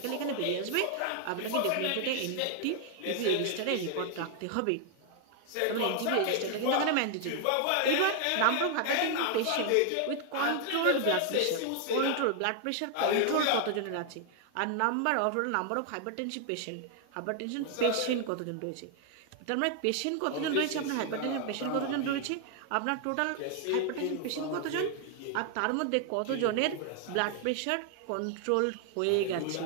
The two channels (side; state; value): both; different; correlation 0.00